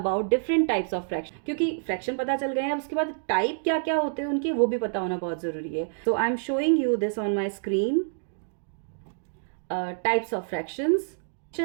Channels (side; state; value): left; silent; digital silence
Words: different types of fraction, क्योंकि fraction पता चल गए हैं, उसके बाद type क्या क्या होते हैं उनके वो भी पता होना बहुत ज़रूरी है. So I am showing you this on my screen. Types of fractions.